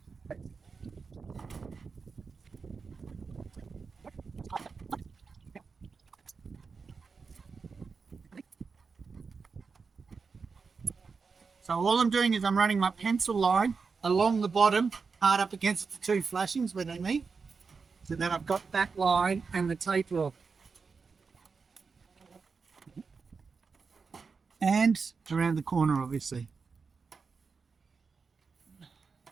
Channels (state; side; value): quieter; left; 5.0 dB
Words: So all I'm doing is I'm running my pencil line along the bottom, hard up against the two flashings where they meet. So then I've got that line and the taper off. And around the corner, obviously.